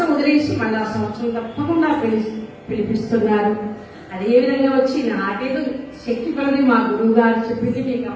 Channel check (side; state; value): both; identical; correlation 1.00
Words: వదిలేసి మళ్ళీ ఆ సంవత్సరం తప్పకుండా పిలిపిస్తున్నారు. అదేవిధంగా వచ్చి నాకేదో శక్తి పడని మా గురువు గారు చెప్పింది మీకు